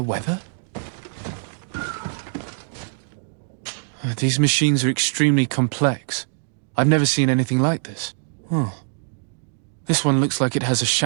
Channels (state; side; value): silent; left; digital silence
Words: weather? These machines are extremely complex. I've never seen anything like this. Oh. This one looks like it has a